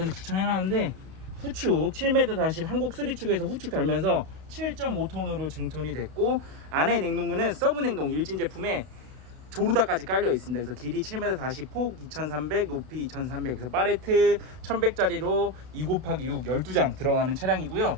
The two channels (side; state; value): left; late; 32 ms